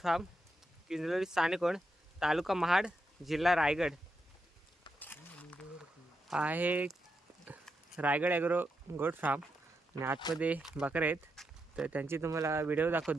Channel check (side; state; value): both; normal; correlation 0.85